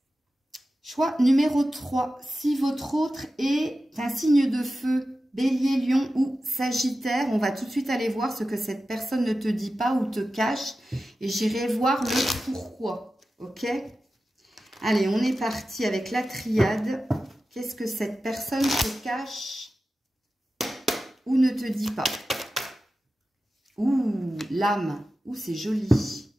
Choix numéro 3. Si votre autre est un signe de feu, Bélier, Lion ou Sagittaire, on va tout de suite aller voir ce que cette personne ne te dit pas ou te cache. Et j'irai voir le pourquoi. Ok? Allez, on est parti avec la triade. Qu'est-ce que cette personne te cache ou ne te dit pas? Ouh, l'âme. Ouh, c'est joli.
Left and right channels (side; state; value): both; normal; correlation 0.93